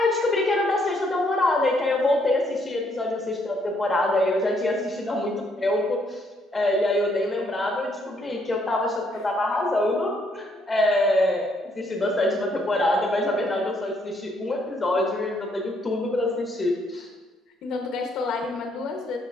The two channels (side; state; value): both; normal; correlation 0.70